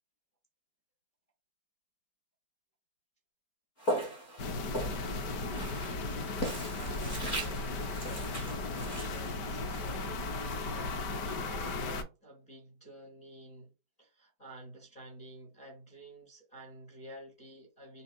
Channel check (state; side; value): late; right; 4.5 ms